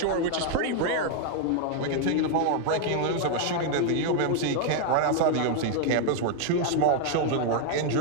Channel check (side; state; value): both; different; correlation 0.00